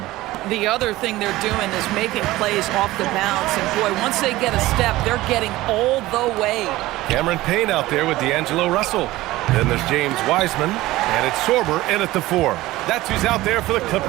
The other thing they're doing is making plays off the bounce. And, boy, once they get a step, they're getting all the way. Cameron Payne out there with D'Angelo Russell. Then there's James Wiseman, and it's Sorber in at the 4. That's who's out there for the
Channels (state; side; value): quieter; left; 17.7 dB